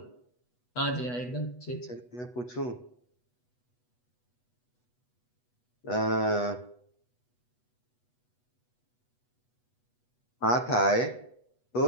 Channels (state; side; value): late; right; 8.1 ms